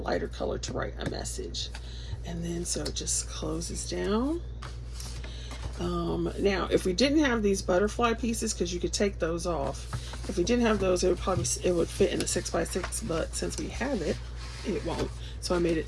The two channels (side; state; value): both; identical; correlation 1.00